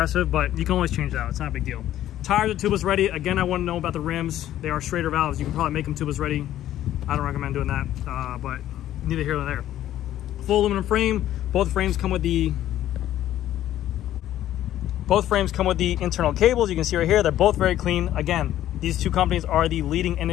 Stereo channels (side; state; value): right; quieter; 12.6 dB